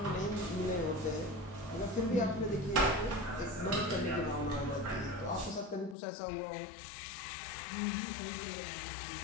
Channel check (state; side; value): drops out; right; at 6.0 s